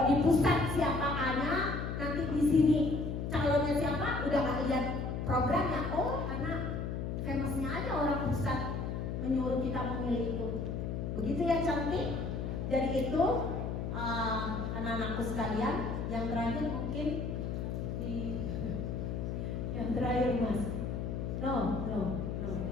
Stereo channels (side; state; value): left; noise; hum, 3 dB below the sound